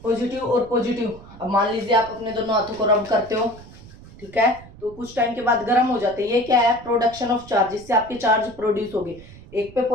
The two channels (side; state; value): right; noise; rumble, 19 dB below the sound